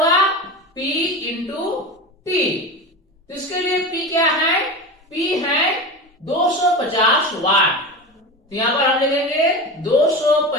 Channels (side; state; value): both; normal; correlation 0.26